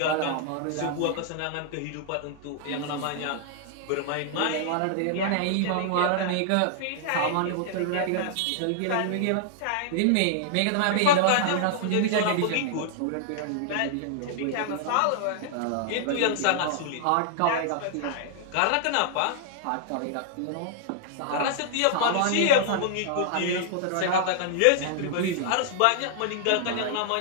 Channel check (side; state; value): both; different; correlation -0.01